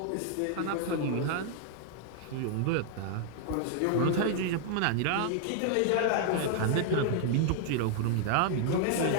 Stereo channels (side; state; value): both; different; correlation 0.00